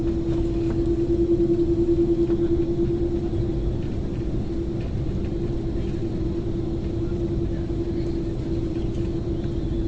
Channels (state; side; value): identical; both; correlation 1.00